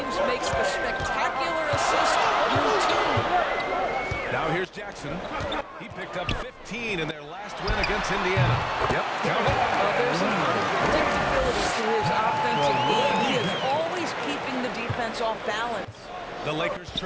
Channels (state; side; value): identical; both; correlation 1.00